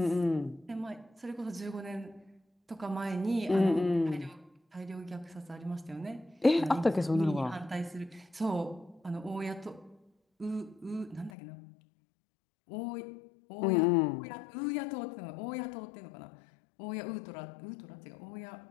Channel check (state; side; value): drops out; right; at 11.3 s